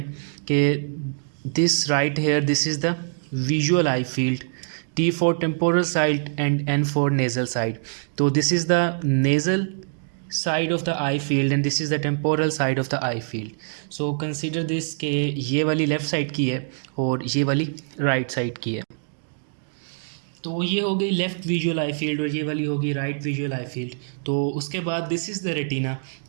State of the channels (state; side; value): silent; left; digital silence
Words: कि this right here this is the visual eye field, T for temporal side and N for nasal side. तो this is the nasal side of the eye field and this is the temporal side of the eye field. So consider this कि ये वाली left side की है और ये वाली right side की है। तो ये हो गई लेफ़्ट विजुअल आई फील्ड और ये वाली होगी राइट विजुअल आई फील्ड। तो उसके बाद दिस इज़ द रेटिना।